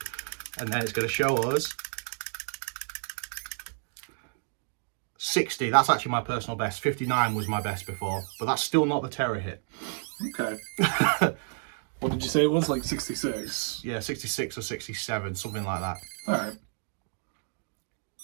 And then it's going to show us 60. That's actually my personal best. 59 was my best before, but that's still not the Terror Hit. Okay. What did you say it was? Like 66? Yeah, 66 or 67, something like that. All right.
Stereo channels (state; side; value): silent; left; 58 dB below the other